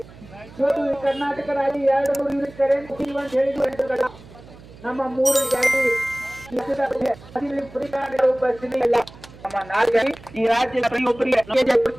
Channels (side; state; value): right; noise; hum, 20 dB below the sound